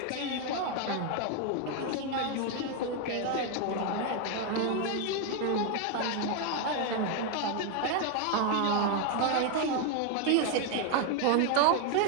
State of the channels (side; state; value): both; different; correlation 0.01